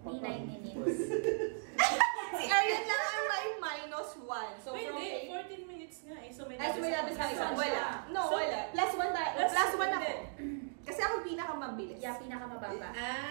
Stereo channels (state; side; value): silent; left; digital silence